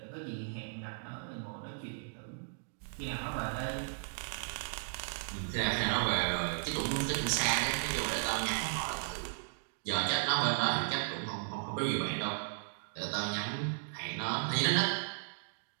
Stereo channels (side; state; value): left; silent; digital silence